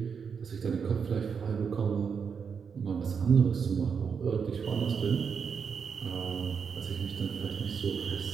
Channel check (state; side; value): quieter; left; 6.3 dB